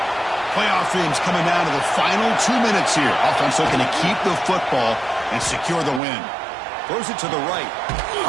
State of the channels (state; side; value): drops out; left; at 6.0 s